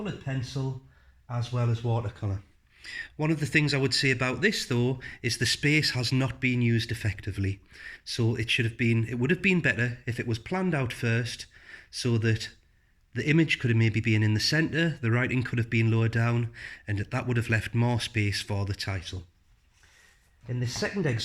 pencil as well as watercolour. One of the things I would say about this though is the space has not been used effectively. So it would have been better if it was planned out first so that the image could have maybe been in the centre, the writing could have been lower down, and that would have left more space for the title. In this second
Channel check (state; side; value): identical; both; correlation 1.00